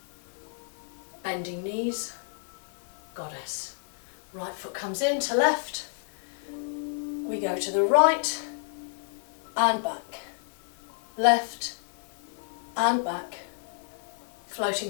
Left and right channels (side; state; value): right; silent; digital silence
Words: bending knees, goddess. Right foot comes in to left, we go to the right and back, left and back,